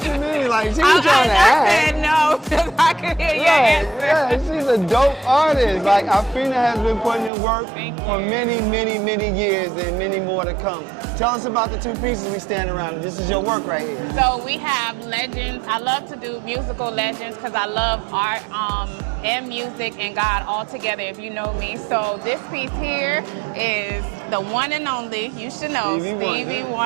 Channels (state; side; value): drops out; left; at 7.3 s